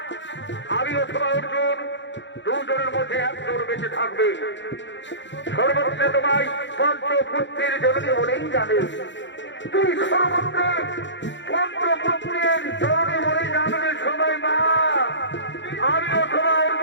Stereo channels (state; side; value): late; right; 0.53 ms